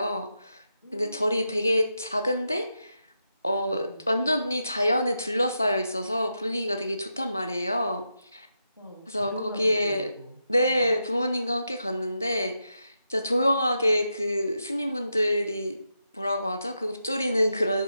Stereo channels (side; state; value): both; inverted; correlation -0.86